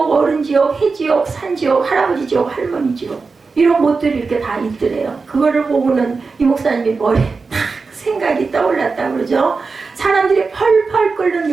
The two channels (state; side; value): quieter; left; 4.4 dB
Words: 어른 지옥, 해 지옥, 산 지옥, 할아버지 지옥, 할머니 지옥 이런 곳들이 이렇게 다 있더래요. 그거를 보고는 이 목사님이 머리에 탁 생각이 떠올랐다 그러죠. 사람들이 펄펄 끓는